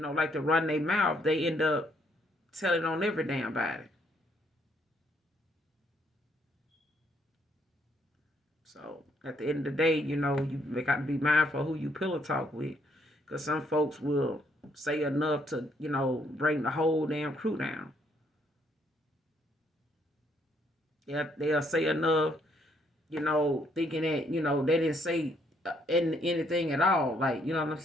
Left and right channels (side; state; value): both; normal; correlation 0.70